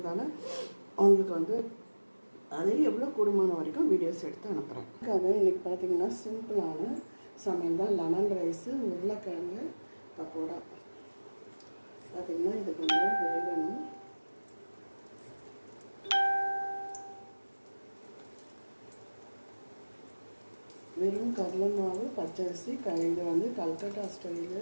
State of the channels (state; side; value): inverted; both; correlation -1.00